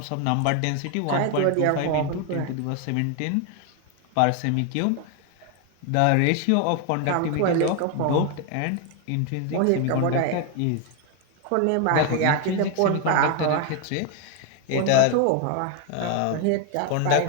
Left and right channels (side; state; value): both; different; correlation 0.01